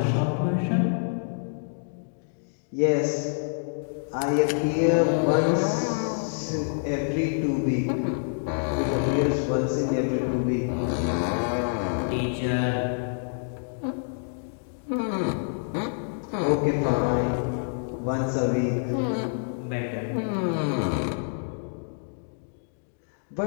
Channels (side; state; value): right; silent; digital silence